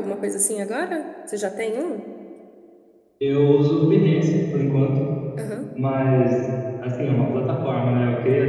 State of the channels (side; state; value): both; identical; correlation 1.00